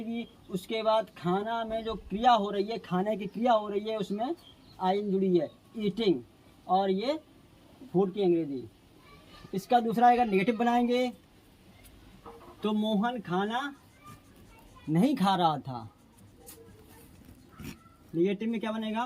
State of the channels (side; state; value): both; identical; correlation 1.00